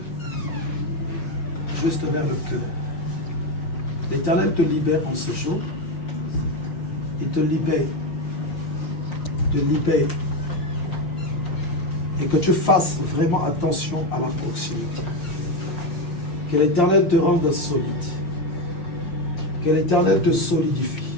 juste vers le cœur. L'Éternel te libère en ce jour. Il te libère. Te libère. Et que tu fasses vraiment attention à la proximité. Que l'Éternel te rende solide. Que l'Éternel te solidifie.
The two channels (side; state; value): right; late; 5.7 ms